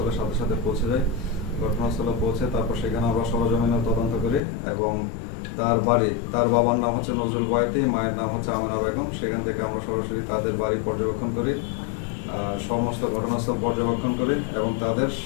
সাথে সাথে পৌঁছে যাই। ঘটনাস্থলে পৌঁছে তারপর সেখানে আমরা সরজমিনে তদন্ত করি এবং তার বাবার নাম হচ্ছে নজরুল বয়াতি, মায়ের নাম হচ্ছে আমেনা বেগম। সেখান থেকে আমরা সরাসরি তাদের বাড়ি পর্যবেক্ষণ করি, সমস্ত ঘটনাস্থল পর্যবেক্ষণ করি এবং তাদের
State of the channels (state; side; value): drops out; right; at 4.4 s